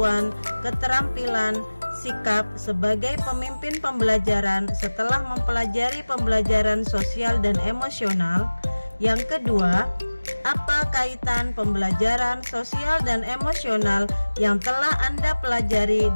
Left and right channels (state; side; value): inverted; both; correlation -1.00